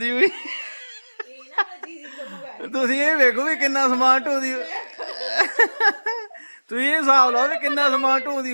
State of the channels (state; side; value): inverted; both; correlation -1.00